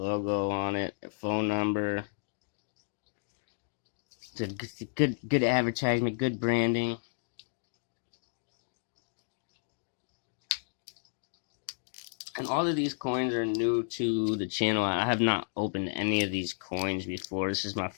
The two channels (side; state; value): right; silent; digital silence